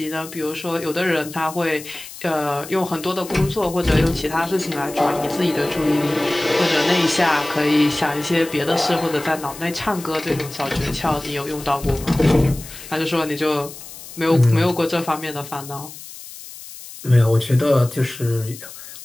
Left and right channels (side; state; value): left; noise; hiss, 15 dB below the sound